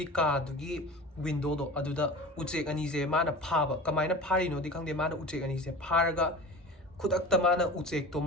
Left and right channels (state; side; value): normal; both; correlation 0.35